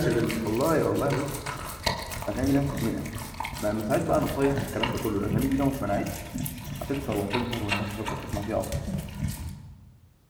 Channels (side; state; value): both; identical; correlation 1.00